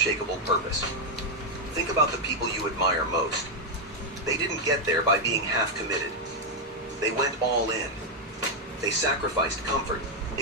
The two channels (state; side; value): normal; both; correlation 0.00